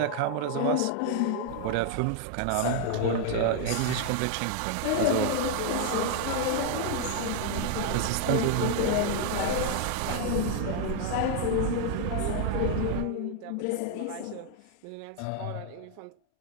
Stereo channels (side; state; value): both; different; correlation 0.00